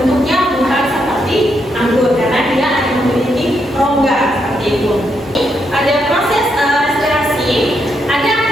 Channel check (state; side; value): normal; both; correlation 0.79